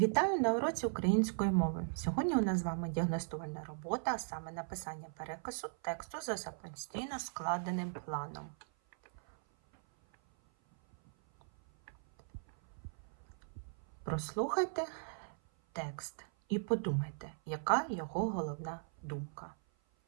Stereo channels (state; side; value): silent; left; 52 dB below the other